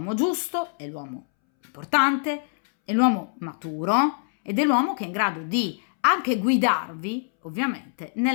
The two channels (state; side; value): silent; right; 62 dB below the other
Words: giusto, è l'uomo importante, è l'uomo maturo ed è l'uomo che è in grado di anche guidarvi, ovviamente,